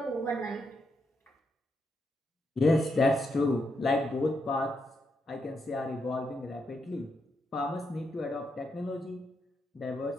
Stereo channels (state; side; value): normal; both; correlation 0.81